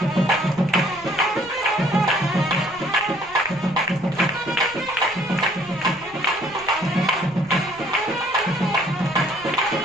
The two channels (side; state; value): right; noise; rumble, 23 dB below the sound